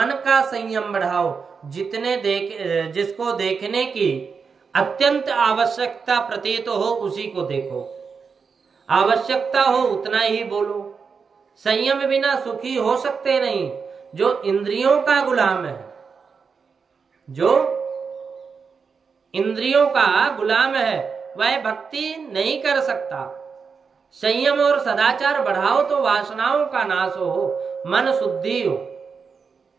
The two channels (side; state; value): left; quieter; 5.5 dB